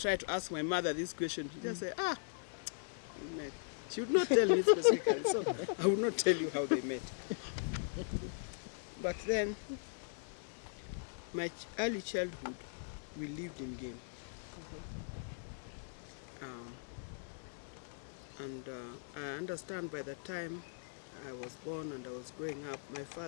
to ask my mother this question, she just say, we met. She would not tell me specifically, so I will not tell you how they met. But then, my early childhood, we lived in Game. And I understand by the time I was born and I was growing up,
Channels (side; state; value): right; silent; digital silence